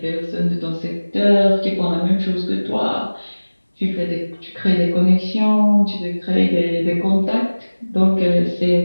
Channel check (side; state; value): both; inverted; correlation -1.00